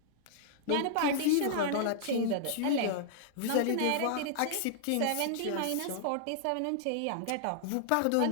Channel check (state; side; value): different; both; correlation -0.01